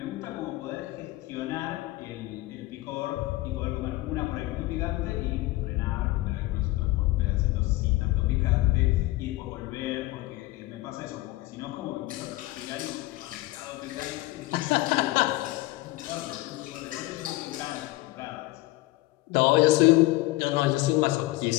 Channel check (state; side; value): quieter; right; 19.2 dB